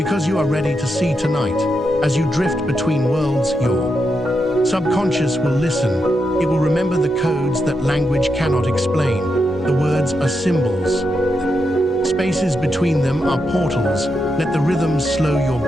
you are ready to see tonight. As you drift between worlds, your subconscious will listen. It will remember the codes that language cannot explain. The words are symbols. Spaces between them are portals. Let the rhythms slow your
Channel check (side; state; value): both; normal; correlation 0.84